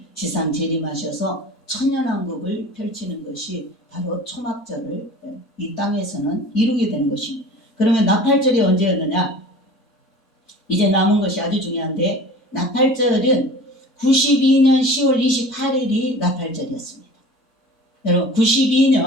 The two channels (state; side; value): normal; both; correlation 0.41